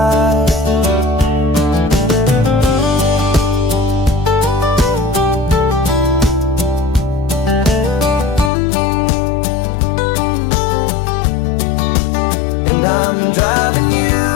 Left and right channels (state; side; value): drops out; right; at 8.5 s